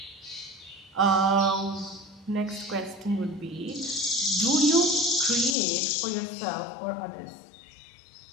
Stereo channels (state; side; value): drops out; right; at 5.6 s